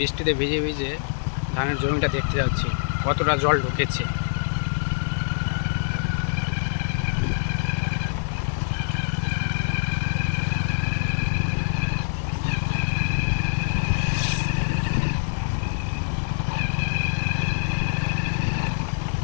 ভিজে ভিজে ধানের জমিটা দেখতে যাচ্ছি কতটা জল ঢুকেছে।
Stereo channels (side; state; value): right; silent; digital silence